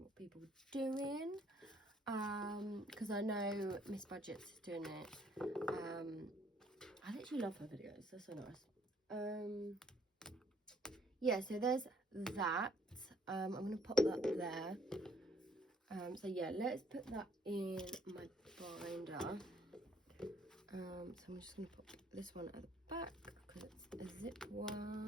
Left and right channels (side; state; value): both; normal; correlation 0.63